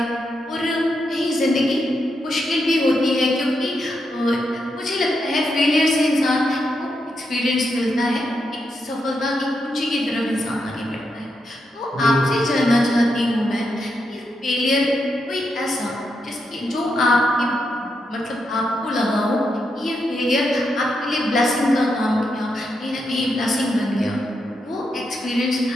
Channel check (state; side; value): normal; both; correlation 0.83